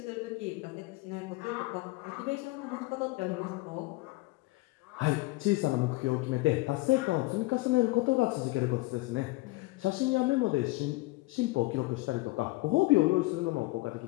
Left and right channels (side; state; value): right; quieter; 21.3 dB